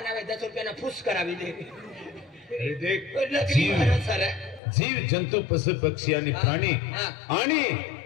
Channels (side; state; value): right; drops out; at 4.6 s